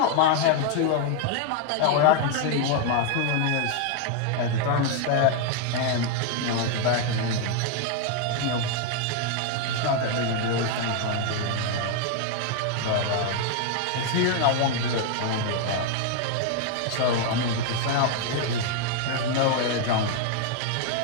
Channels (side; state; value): both; different; correlation 0.00